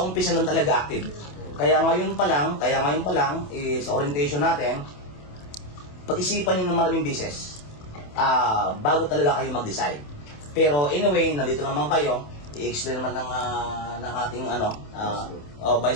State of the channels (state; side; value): late; right; 27 ms